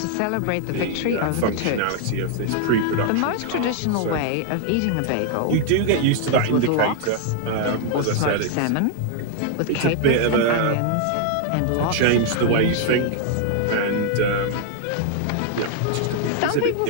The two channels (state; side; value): different; both; correlation 0.00